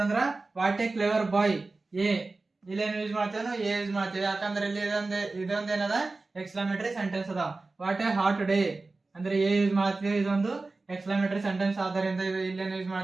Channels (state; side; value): quieter; left; 3.5 dB